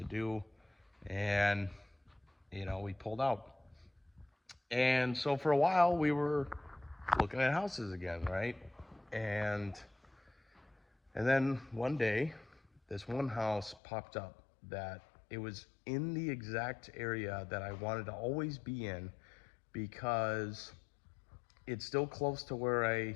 do. And we pulled out. And so for a while we were looking at houses again, right? And then one day this one house popped up that it was in the exact area that I wanted to always be in, because it's still close to where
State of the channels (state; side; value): drops out; right; at 13.8 s